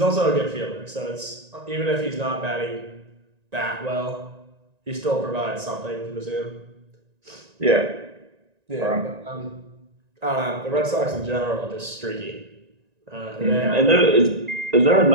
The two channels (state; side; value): late; left; 1.9 ms